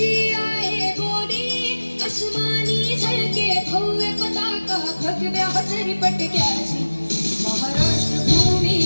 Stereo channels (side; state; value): both; inverted; correlation -1.00